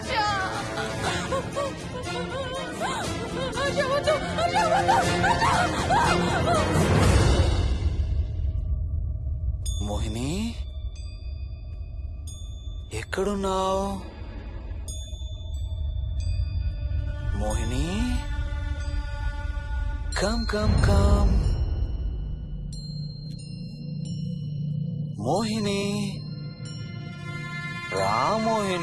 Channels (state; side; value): identical; both; correlation 1.00